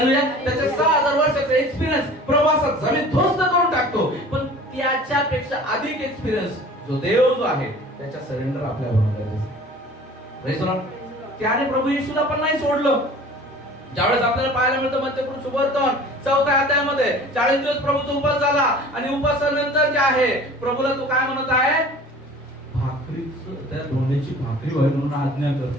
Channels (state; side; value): normal; both; correlation 0.45